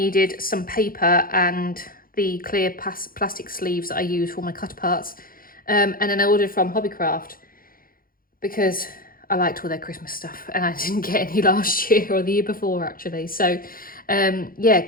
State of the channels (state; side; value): late; right; 0.42 ms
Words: some paper and the clear plastic sleeves that I use for my cut parts. And then I ordered from Hobbycraft because I liked all their Christmas stuff and I didn't get any last year or the year before actually. So yeah,